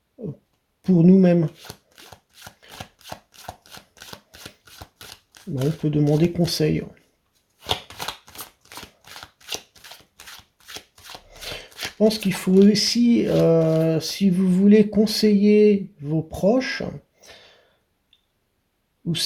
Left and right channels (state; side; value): identical; both; correlation 1.00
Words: pour nous-mêmes. On peut demander conseil. Je pense qu'il faut aussi, si vous voulez conseiller vos proches, ou